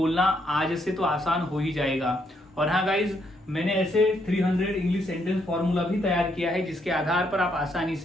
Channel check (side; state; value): both; normal; correlation 0.74